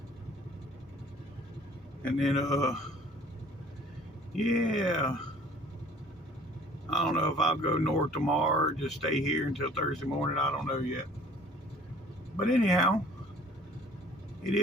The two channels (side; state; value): both; normal; correlation 0.52